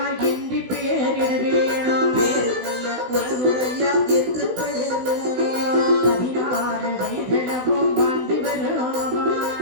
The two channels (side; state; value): left; late; 16 ms